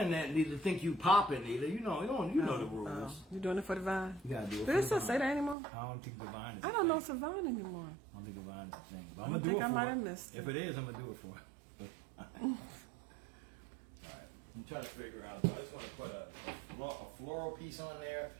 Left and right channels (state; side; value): drops out; left; at 5.6 s